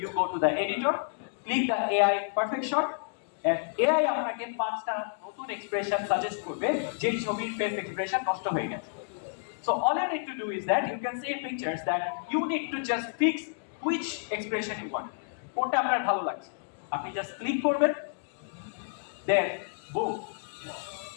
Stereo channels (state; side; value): silent; right; digital silence